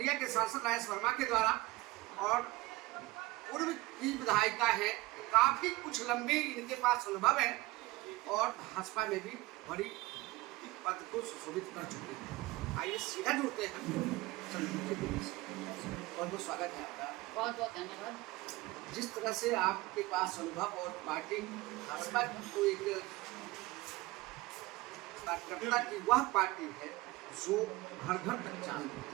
के सांसद राजेश वर्मा के द्वारा। और पूर्व की विधायिका है, काफी कुछ लंबी इनके पास अनुभव है और भाजपा में भी बड़ी पद को सुशोभित कर चुके हैं। आइए सीधा जुड़ते हैं चंद्रमुखी देवी से। बहुत बहुत स्वागत है आपका। बहुत बहुत धन्यवाद। जिस तरह से आपके पास अनुभव और पार्टी भाजपा को एक कार्यकर्ता की वह पार्टी है जो घर घर तक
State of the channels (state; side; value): quieter; left; 20.4 dB